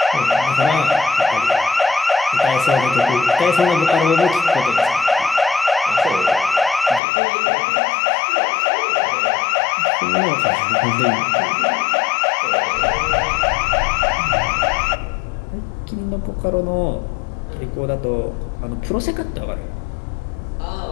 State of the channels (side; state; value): right; drops out; at 7.0 s